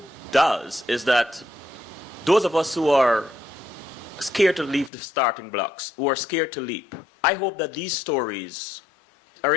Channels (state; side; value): drops out; right; at 4.9 s